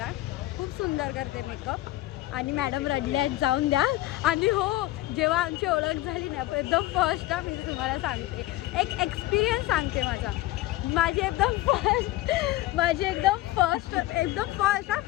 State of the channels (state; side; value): quieter; right; 16.8 dB